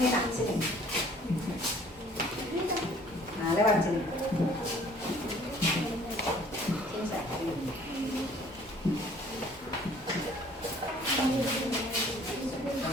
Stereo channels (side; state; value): both; normal; correlation 0.56